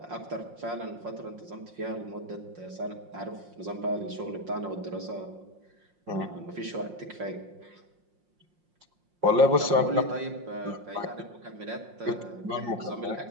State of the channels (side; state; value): left; late; 5.6 ms